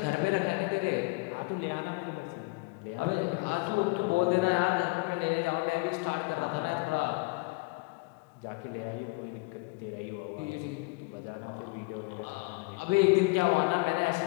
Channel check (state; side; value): quieter; right; 26.4 dB